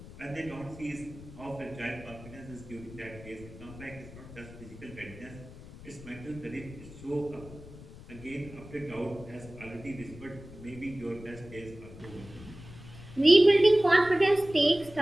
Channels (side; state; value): left; noise; rumble, 16 dB below the sound